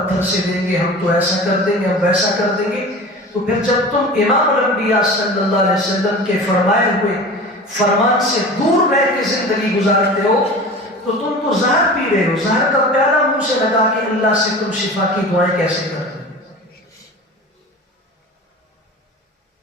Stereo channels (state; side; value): normal; both; correlation 0.36